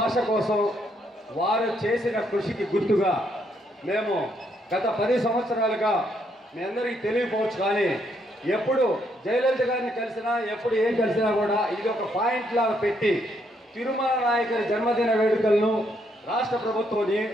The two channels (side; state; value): both; normal; correlation 0.74